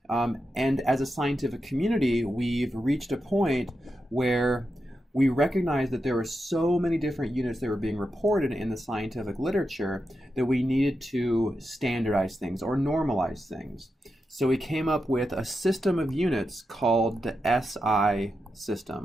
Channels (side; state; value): both; normal; correlation 0.88